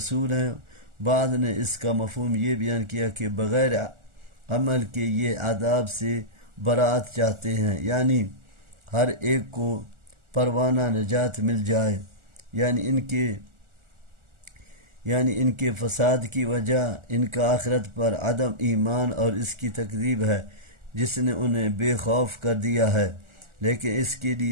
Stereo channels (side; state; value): left; late; 1.4 ms